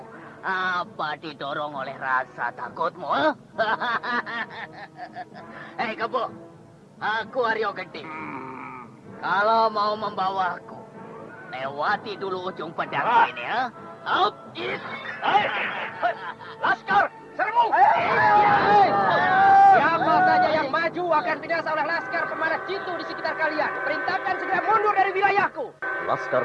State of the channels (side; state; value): both; identical; correlation 1.00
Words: Apa didorong oleh rasa takutmu? Hei Kebo, aku Aryo Gede. Kalau mau membawaku, lewati dulu ujung pedang ini ya. Laskar, serbu! Siapa saja yang maju akan binasa oleh laskar pemanah jitu di sekitar kalian. Perintahkan segera mundur dari wilayahku.